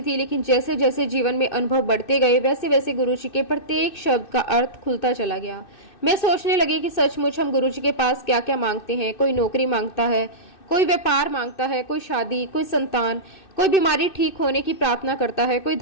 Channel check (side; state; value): right; late; 2.6 ms